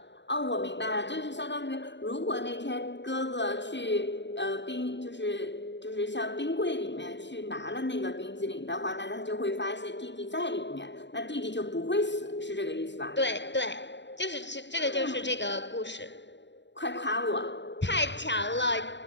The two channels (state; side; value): late; right; 0.52 ms